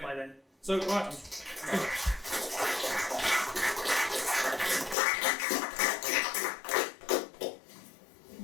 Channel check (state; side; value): drops out; right; at 5.0 s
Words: by then. So, right.